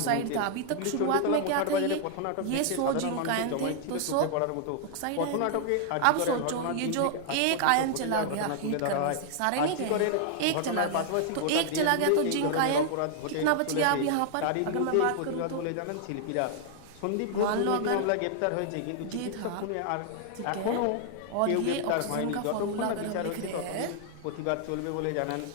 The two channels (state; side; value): different; both; correlation 0.00